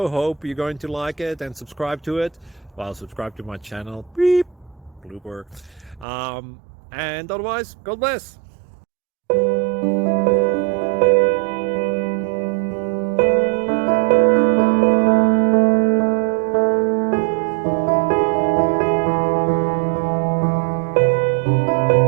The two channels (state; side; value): drops out; left; at 6.1 s